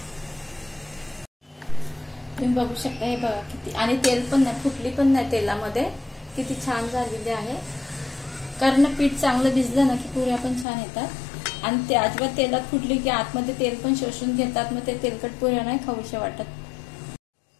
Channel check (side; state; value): right; drops out; at 10.7 s